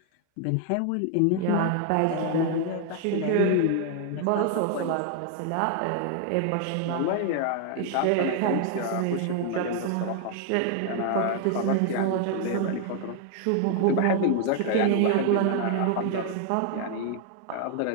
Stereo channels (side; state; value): both; different; correlation 0.00